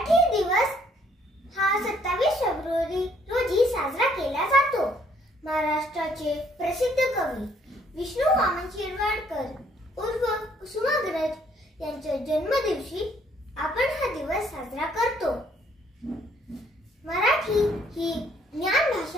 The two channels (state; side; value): normal; both; correlation 0.65